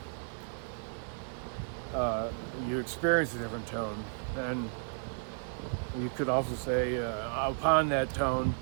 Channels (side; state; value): left; silent; digital silence